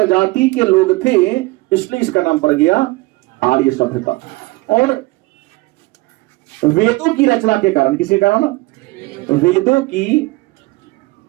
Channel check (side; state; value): left; quieter; 22.2 dB